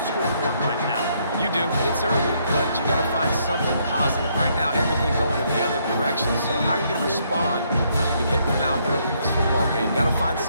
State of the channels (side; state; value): both; inverted; correlation -0.71